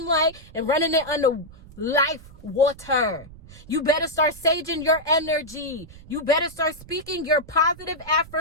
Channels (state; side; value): noise; right; rumble, 19 dB below the sound